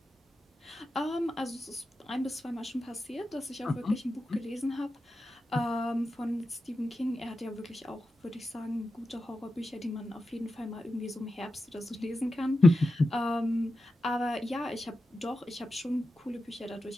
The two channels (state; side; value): normal; both; correlation 0.90